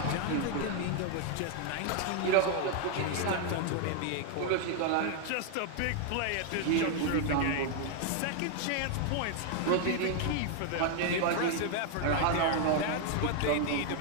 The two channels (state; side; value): different; both; correlation 0.00